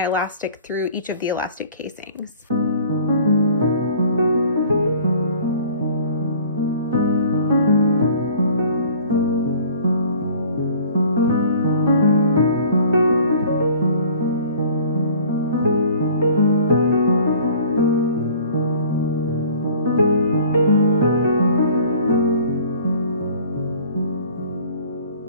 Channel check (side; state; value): both; inverted; correlation -0.49